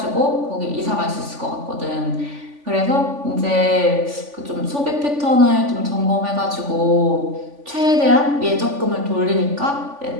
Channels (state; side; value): late; left; 3.5 ms